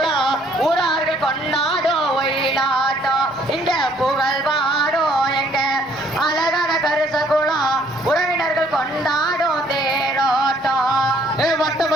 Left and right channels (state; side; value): normal; both; correlation 0.63